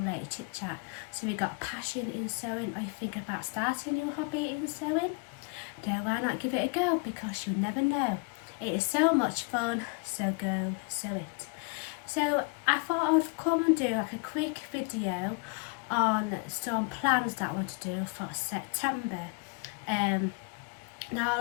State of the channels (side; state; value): right; quieter; 32.4 dB